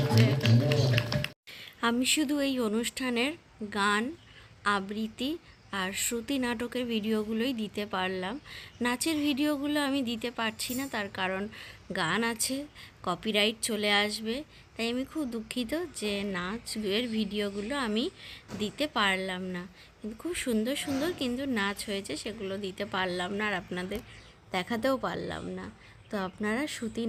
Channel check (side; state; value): both; identical; correlation 1.00